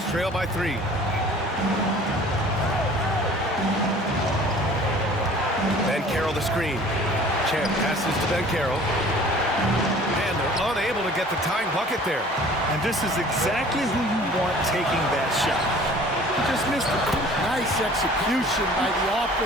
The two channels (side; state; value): both; normal; correlation 0.49